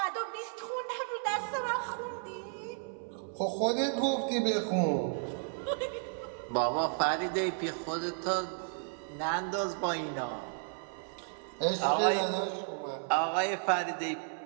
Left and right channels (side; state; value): left; silent; 56 dB below the other